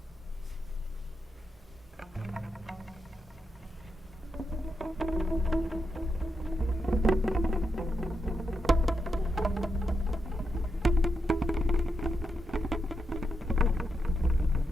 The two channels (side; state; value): both; normal; correlation 0.84